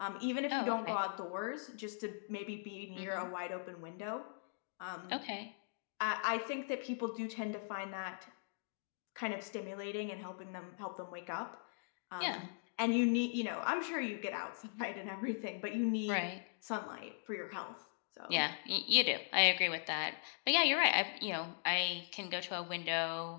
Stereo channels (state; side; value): silent; right; digital silence